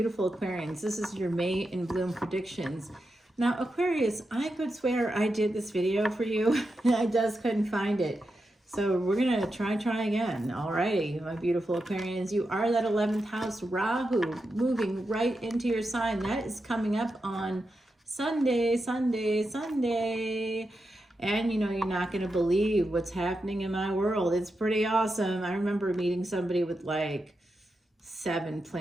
Aquarians. This is your May in Bloom predictions. Now, Aquarius, I could swear I did this video for you. I just couldn't find it. So we're going to try again. Alrighty, my beautiful Aquarians. You are that 11th house, Rahu, moving right into your sign. That is coming up on Sunday. And you know, you're not going to believe what's happening in my world. It's pretty awesome. I remember meeting somebody with like 7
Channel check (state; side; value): normal; both; correlation 0.88